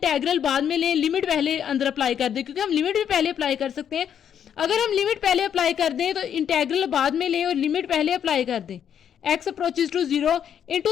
बाद में लें, लिमिट पहले अंदर अप्लाई कर दें, क्योंकि हम लिमिट भी पहले अप्लाई कर सकते हैं। अगर हम लिमिट पहले अप्लाई कर दें तो इंटेग्रल बाद में लें और लिमिट पहले अप्लाई कर दें, x approaches to zero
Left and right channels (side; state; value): right; quieter; 8.8 dB